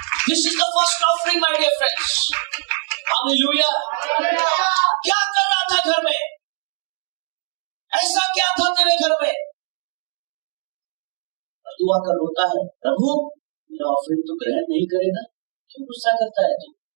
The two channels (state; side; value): silent; left; digital silence